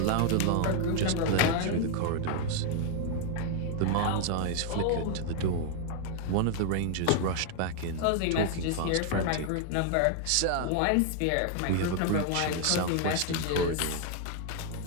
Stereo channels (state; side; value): different; both; correlation 0.00